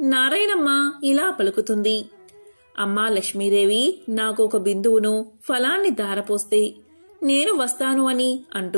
నారాయణమ్మ ఇలా పలుకుతుంది. అమ్మా లక్ష్మీదేవి, నాకు ఒక బిందువును ఫలాన్ని దారపోస్తే నేను వస్తాను అని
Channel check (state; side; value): inverted; both; correlation -1.00